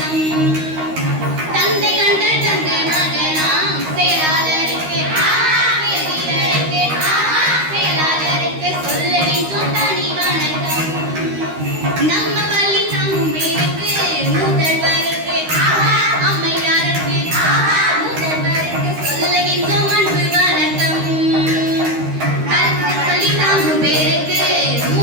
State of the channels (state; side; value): late; left; 13 ms